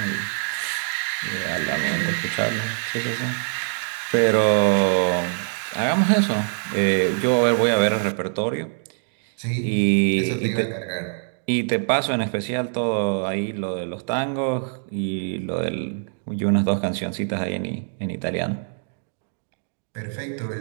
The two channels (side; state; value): left; silent; digital silence